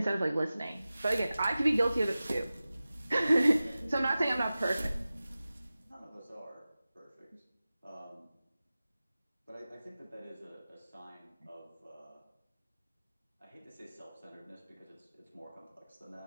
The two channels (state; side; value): inverted; both; correlation -0.96